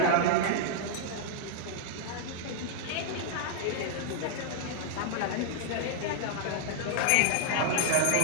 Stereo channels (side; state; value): both; different; correlation -0.01